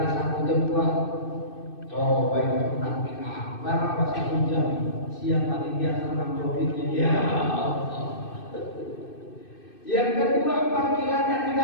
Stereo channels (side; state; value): right; late; 2.6 ms